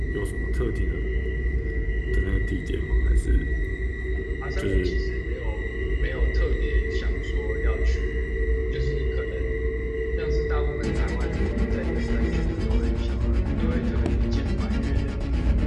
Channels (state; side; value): identical; both; correlation 1.00